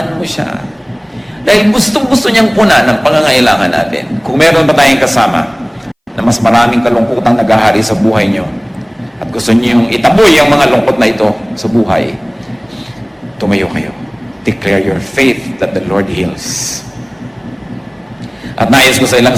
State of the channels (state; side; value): identical; both; correlation 1.00